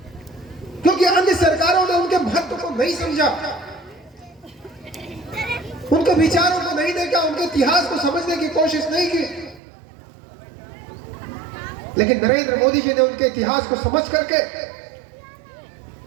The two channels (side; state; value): left; drops out; at 9.6 s